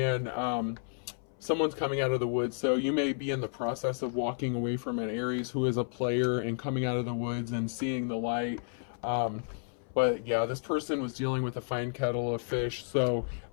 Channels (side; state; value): right; silent; 57 dB below the other